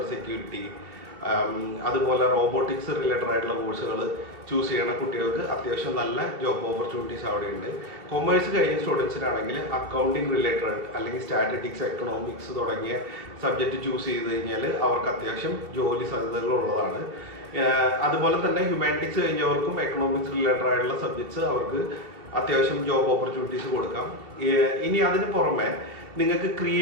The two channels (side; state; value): left; late; 2.7 ms